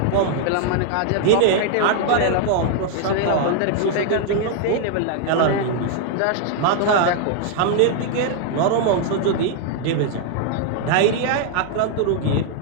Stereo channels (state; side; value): different; both; correlation -0.01